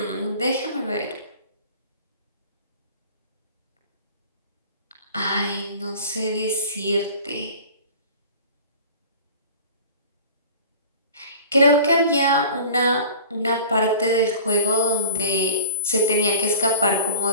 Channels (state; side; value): inverted; both; correlation -0.40